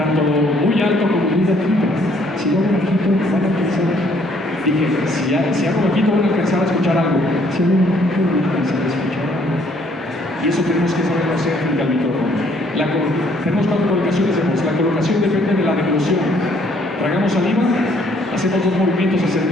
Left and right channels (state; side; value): normal; both; correlation 0.64